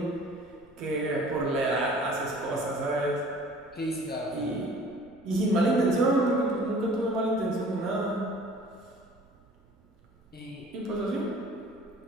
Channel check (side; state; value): right; noise; rumble, 29 dB below the sound